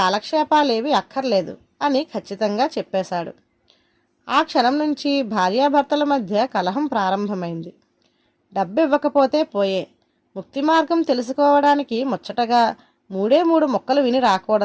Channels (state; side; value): identical; both; correlation 1.00